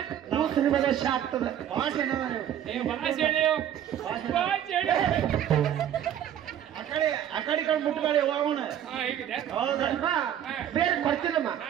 ಕೂಸು ನಿಮಗೆ ದಶ ಆಗ್ತದೆ. ಭಾಷೆ ಆ ಕಡೆ ಮುಟ್ಕೊಳ್ಳಿ ಹೋಗೋಣ ಹೌದಾ ಅಮ್ಮ, ಬೇರೆ ಕೊಡ್ತೀನಮ್ಮ.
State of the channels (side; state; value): left; quieter; 10.3 dB